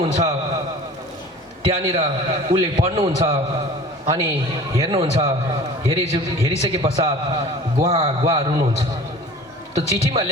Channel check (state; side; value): normal; both; correlation 0.43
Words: त्यहाँनिर उसले पढ्नुहुन्छ अनि हेर्नुहुन्छ। हेरिसके पश्चात गुहा रुनुहुन्छ। त्यो चिठीमा